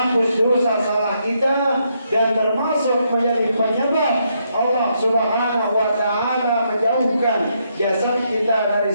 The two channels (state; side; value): inverted; both; correlation -0.77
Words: dosa salah kita dan termasuk menjadi penyebab Allah Subhanahu wa taala menjauhkan jasad kita dari